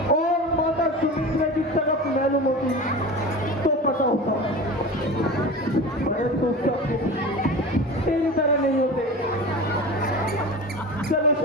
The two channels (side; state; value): both; normal; correlation 0.32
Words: और माता सुमित्रा की तरफ मालूम होती तो पता होता, परंतु सब तेरी तरह नहीं होते। चलो